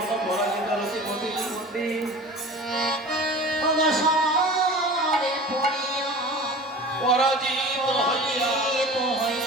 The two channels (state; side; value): normal; both; correlation 0.37